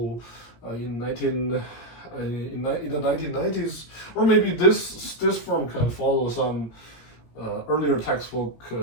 in the 1990s, or maybe this firm can follow some earlier textbook,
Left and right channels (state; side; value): late; right; 17 ms